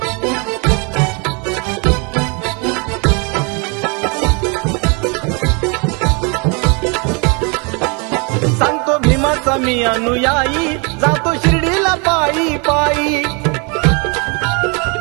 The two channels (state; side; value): quieter; left; 32.6 dB